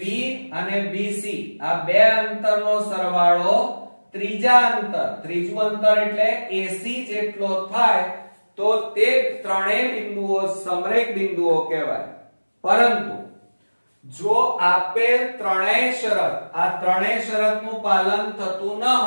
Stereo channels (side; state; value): both; inverted; correlation -1.00